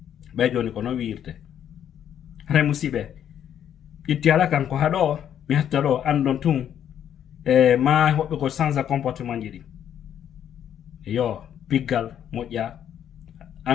ɓay joni ko noon wiirte hara musidɓe itti ala kanko haɗo mi hatta ɗo andon tun e ma hoɓɓe ko change comportement ji ɗi yo piggal moƴƴa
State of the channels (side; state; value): right; quieter; 9.7 dB